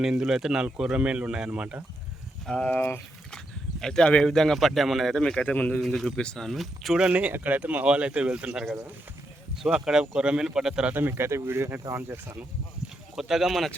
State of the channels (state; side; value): normal; both; correlation 0.82